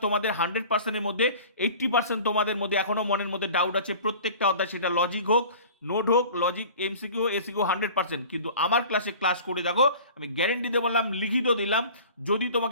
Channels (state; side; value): inverted; both; correlation -0.43